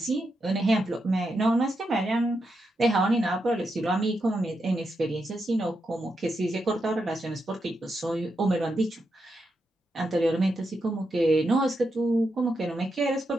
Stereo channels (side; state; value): both; normal; correlation 0.84